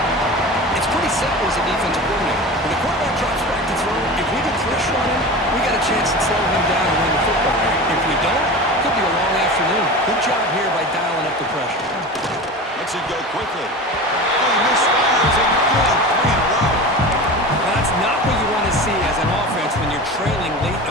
It's pretty simple as a defensive coordinator. When the quarterback drops back to throw, if we get pressure on him, we got a chance to slow him down and win the football game. If we don't, it could be a long afternoon. Good job here by dialing up the pressure. Lets it go quickly. Oh, he misfires it. Good. 3 in a row. Now, that's not what you want to see as an offense when you're trailing late in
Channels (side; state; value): both; normal; correlation 0.31